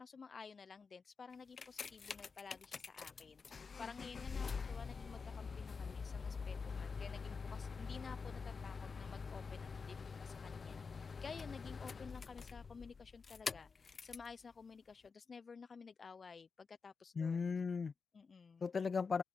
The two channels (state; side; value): quieter; right; 5.0 dB